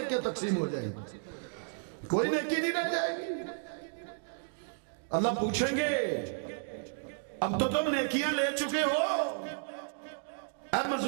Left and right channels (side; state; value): left; silent; digital silence